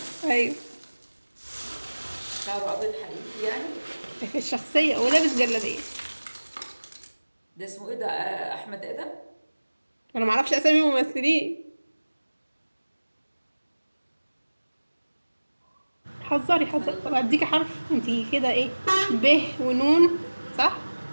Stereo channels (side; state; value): both; inverted; correlation -1.00